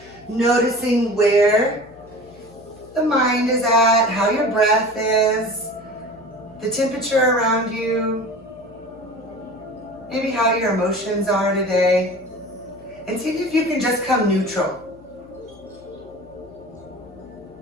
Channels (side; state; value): left; noise; hum, 24 dB below the sound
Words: noticing where the mind is at, how your breath is, the temperature around you, maybe how your emotions are today, and see if you can just come neutral.